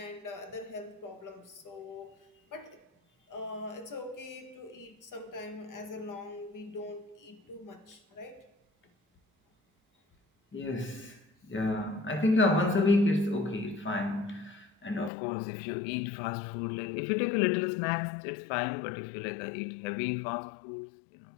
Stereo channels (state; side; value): drops out; right; at 15.1 s